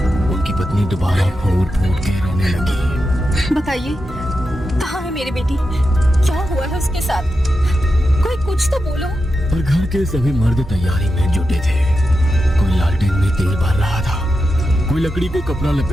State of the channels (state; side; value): normal; both; correlation 0.89